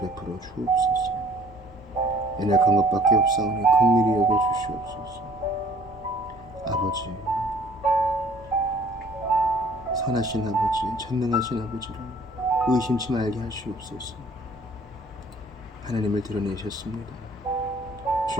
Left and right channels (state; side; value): normal; both; correlation 0.55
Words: 주옵소서. 연약한 것밖에 없사오니 긍휼히 여겨 주시옵소서. 아버지, 선하신 아버지, 전능하신 아버지를 의심치 말게 하시옵소서. 하나님을 드러내셨습니다.